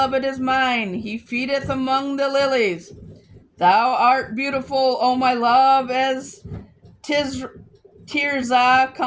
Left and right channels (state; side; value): identical; both; correlation 1.00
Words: is mine. He feedeth among the lilies. Thou art beautiful, O my love, as Tirzah,